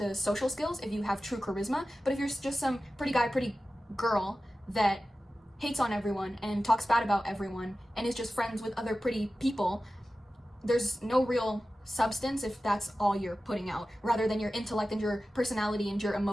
social skills if you have true charisma, but if you're just some pretty guy, pretty girl that hates on everyone and talks bad about everyone and is just friends with other pretty people, there's no real substance if that's all you're putting out, rather than your intellect and your personality and your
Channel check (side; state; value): both; normal; correlation 0.95